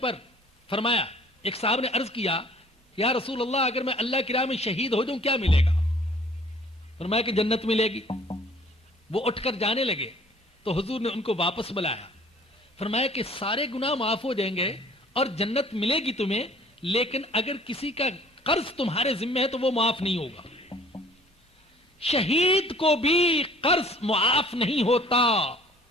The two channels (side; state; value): both; normal; correlation 0.54